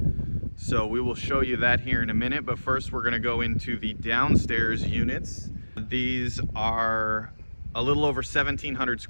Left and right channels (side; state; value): both; inverted; correlation -1.00